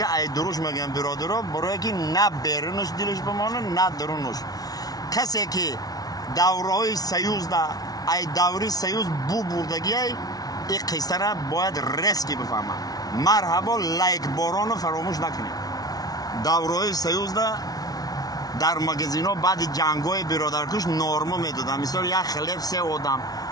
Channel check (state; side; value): late; right; 0.18 ms